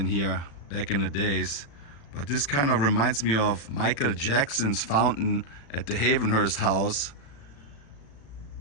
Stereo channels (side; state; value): right; late; 35 ms